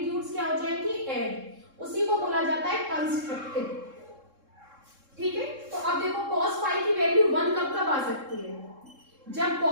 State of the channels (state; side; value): late; left; 3.7 ms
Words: क्या हो जाएंगी, ऐड। उसी को बोला जाता है कंस्ट्रक्टिव। ठीक है, तो अब देखो cos फाई की वैल्यू 1 कब कब आ सकती है, जब